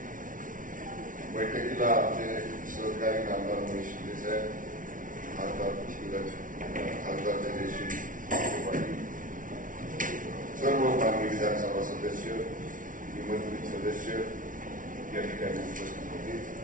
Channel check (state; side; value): late; left; 0.38 ms